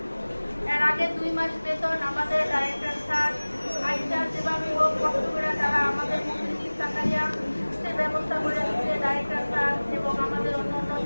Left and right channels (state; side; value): inverted; both; correlation -1.00